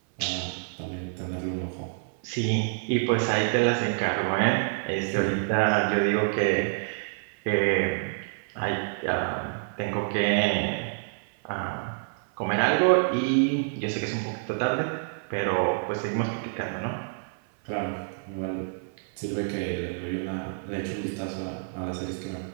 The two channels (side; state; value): left; silent; 60 dB below the other